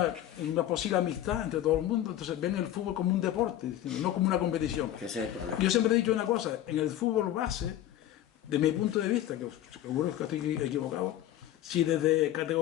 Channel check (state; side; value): quieter; right; 12.6 dB